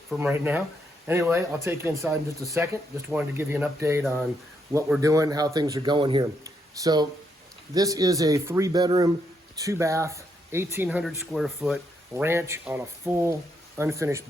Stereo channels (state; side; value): normal; both; correlation 0.77